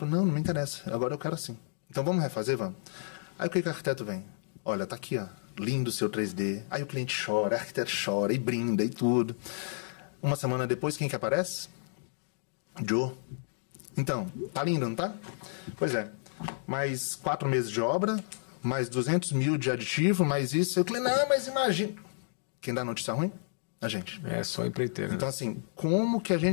Não me interessa, agora eu quero assim. Então vamos refazer, vamos. Aí o que o arquiteto vem? Olha, tá aqui, ó, lindo o seu 3D. Aí o cliente chora, o arquiteto chora e brinda e tudo. Uma semana depois, quem que aparece? Joe. Então, tá lindo, não tá? Pois é. Mais 4 meses de obra, mais 200 mil de aditivo, mais isso. Eu falei, não, mas imagina. Quem dá notícia ruim? A gente. É só empreiteiro. Então, assim, como que a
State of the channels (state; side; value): silent; right; digital silence